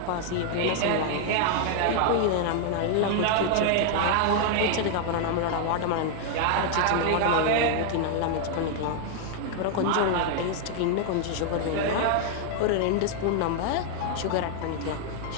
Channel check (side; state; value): both; different; correlation 0.00